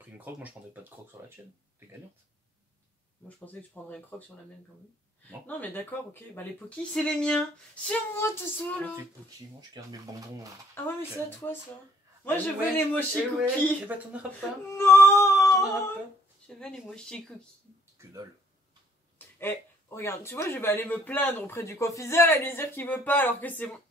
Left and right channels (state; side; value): normal; both; correlation 0.63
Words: une croque, moi je prendrais pas de croque sur la tienne. T'es gagnante. Moi je pensais que tu prendrais une croque sur la mienne quand même. Non, non mais d'accord, ok. Bah les Poki c'est les miens. C'est moi tout ça là. Tes Poki, moi je garde mes bonbons. Ah ouais mais c'est à toi ça. Moi je veux les mochi cookies. Et bah t'en auras pas. Non. Je veux les mochi cookies. Que dalle. Eh, regarde, tu vois je vais aller me plaindre auprès du confiseur et lui dire qu'il veut pas alors que c'est moi.